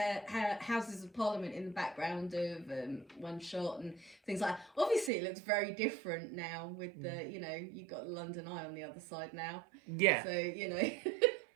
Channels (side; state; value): left; drops out; at 5.1 s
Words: Houses of Parliament in the background of one shot and things like that. Obviously, it looks very different now with the, you've got London Eye on the other side now. Yeah. So,